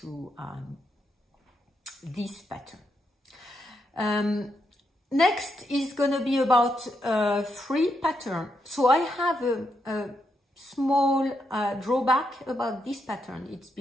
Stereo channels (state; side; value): normal; both; correlation 0.80